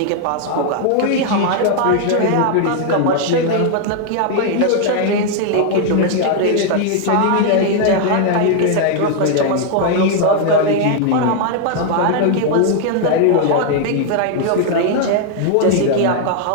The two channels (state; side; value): different; both; correlation 0.00